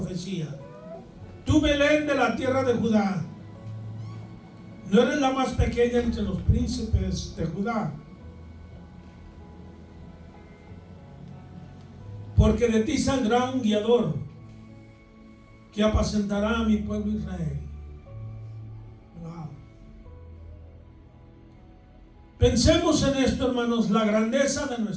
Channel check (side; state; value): both; identical; correlation 1.00